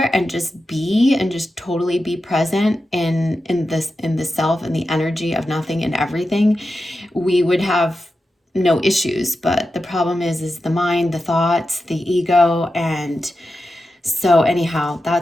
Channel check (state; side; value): normal; both; correlation 0.90